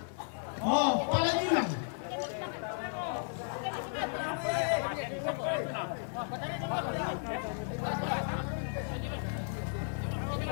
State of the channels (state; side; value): silent; right; 55 dB below the other